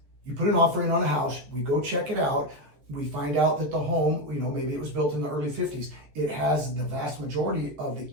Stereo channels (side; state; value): left; late; 14 ms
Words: put an offer in on a house, we go check it out, we find out that the home, maybe it was built in the early 50s, it has the vast majority of the